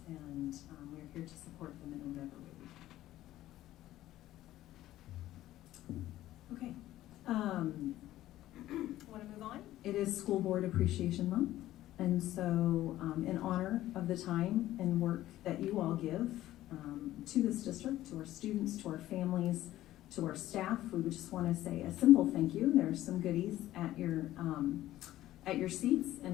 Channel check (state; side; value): quieter; right; 14.5 dB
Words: and we're here to support them in whatever way we can. Okay. Want to move on? It is School Board Appreciation Month, and so in honor of the time and work that you all give to this district, to our students, to our families, to our staff, we would just want to say a simple thank you. There's some goodies at your seats